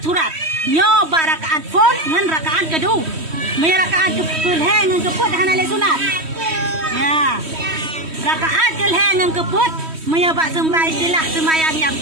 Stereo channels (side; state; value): left; late; 3.1 ms